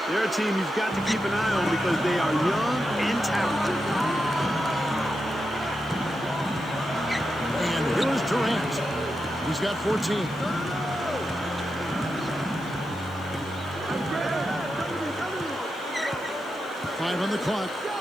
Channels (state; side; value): noise; left; hiss, 26 dB below the sound